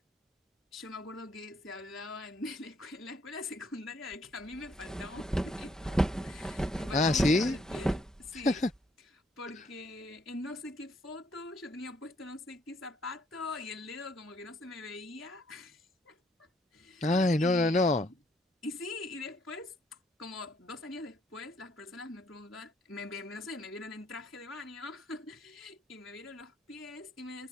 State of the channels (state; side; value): normal; both; correlation 0.68